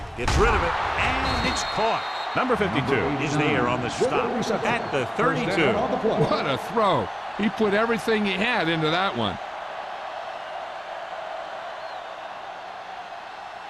gets rid of it, and it's caught. Number 52 is there on the stop at the 32. What a throw. He put everything he had into that one.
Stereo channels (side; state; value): both; identical; correlation 1.00